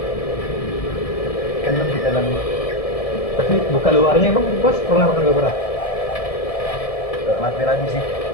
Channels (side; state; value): right; late; 1.7 ms